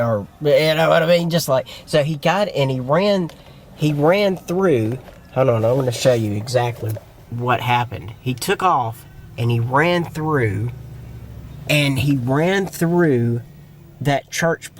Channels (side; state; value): both; identical; correlation 1.00